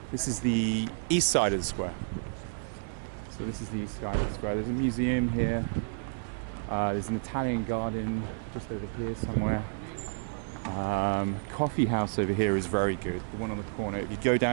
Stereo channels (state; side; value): silent; left; 57 dB below the other